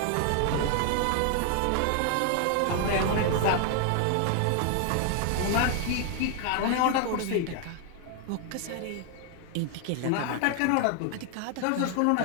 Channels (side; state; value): both; different; correlation 0.00